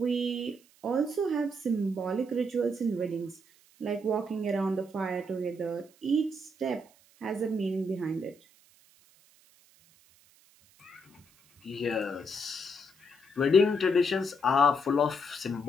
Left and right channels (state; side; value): noise; right; hiss, 30 dB below the sound